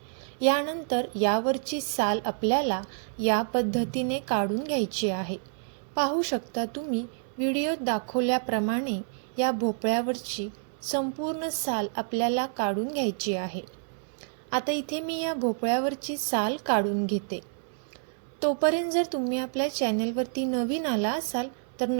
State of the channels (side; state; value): left; silent; 59 dB below the other